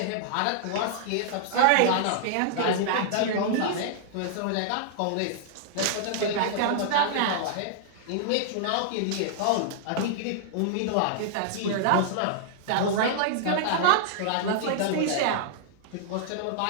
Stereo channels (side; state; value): both; different; correlation -0.01